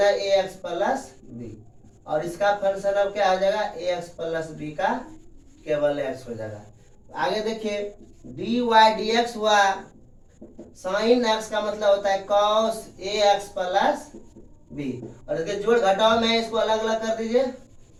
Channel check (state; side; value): identical; both; correlation 1.00